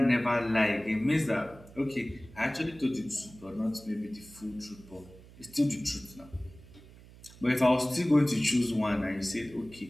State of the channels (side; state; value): right; noise; hum, 21 dB below the sound